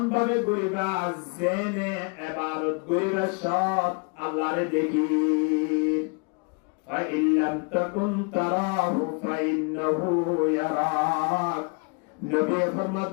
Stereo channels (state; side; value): quieter; right; 33.4 dB